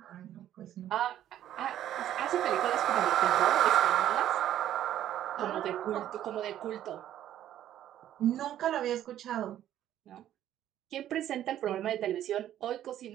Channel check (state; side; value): quieter; left; 11.7 dB